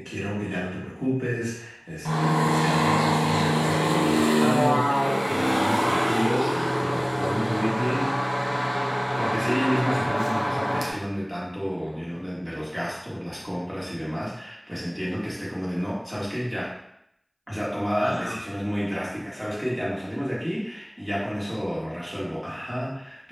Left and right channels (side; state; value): both; identical; correlation 1.00